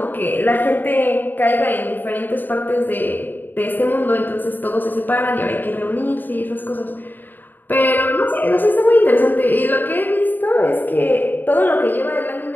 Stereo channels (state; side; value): late; right; 0.090 ms